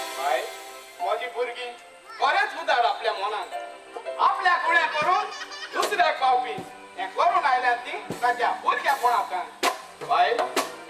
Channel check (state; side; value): identical; both; correlation 1.00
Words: म्हजी भुरगीं खरेंच उदार आपल्या मनान आपल्या कुण्या करून दुसऱ्याक पावपी हें करून आयल्यात ती ताच्या भुरग्यापणांतल्यान बाय